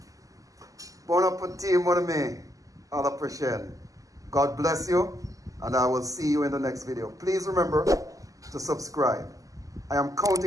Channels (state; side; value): late; left; 0.17 ms